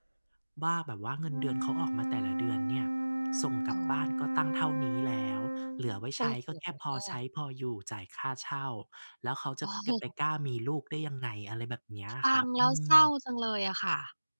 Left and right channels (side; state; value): both; inverted; correlation -1.00